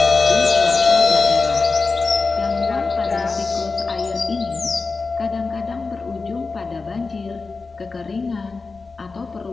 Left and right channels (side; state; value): right; quieter; 4.1 dB